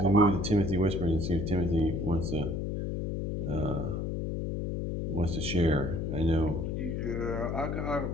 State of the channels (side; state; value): left; noise; hum, 2 dB below the sound